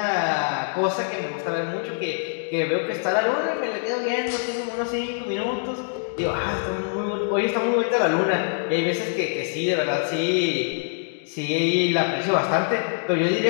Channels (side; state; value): right; silent; digital silence